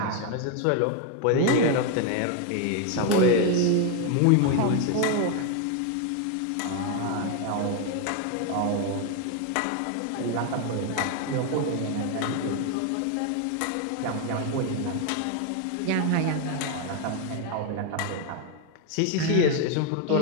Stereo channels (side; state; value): both; different; correlation 0.01